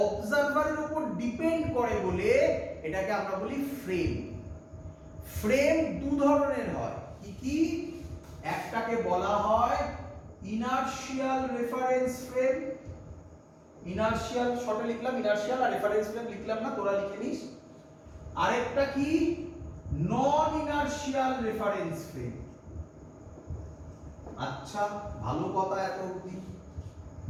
অবজারভারের উপর ডিপেন্ড করে বলে এটাকে আমরা বলি ফ্রেম। ফ্রেম দু ধরনের হয়, কি কি? একটাকে বলা হয় ইনার্শিয়াল রেফারেন্স ফ্রেম। ইনার্শিয়াল শর্টে লিখলাম ইনার্শিয়াল, আর রেফারেন্স ফ্রেম লিখলাম না, তোরা লিখে নিস। আরেকটা কি? নন ইনার্শিয়াল রেফারেন্স ফ্রেম। আচ্ছা, ভালো কথা এত অবধি।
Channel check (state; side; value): identical; both; correlation 1.00